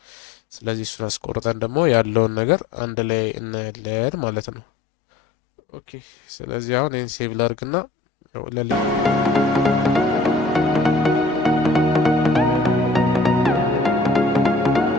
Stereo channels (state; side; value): quieter; right; 3.1 dB